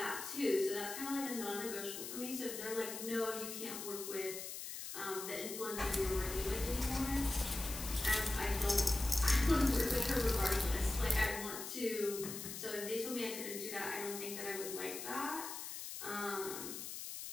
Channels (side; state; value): left; noise; hiss, 7 dB below the sound